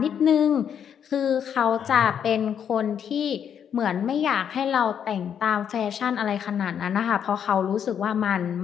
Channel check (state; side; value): quieter; right; 8.4 dB